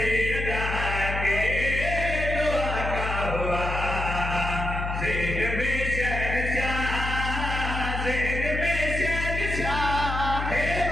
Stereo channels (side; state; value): left; noise; hum, 3 dB below the sound